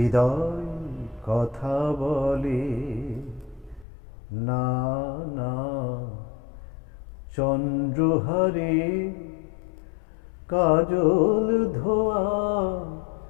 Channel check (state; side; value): drops out; right; at 3.9 s